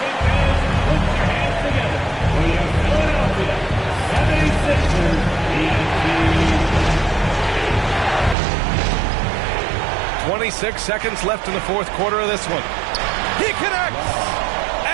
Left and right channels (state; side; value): drops out; left; at 8.3 s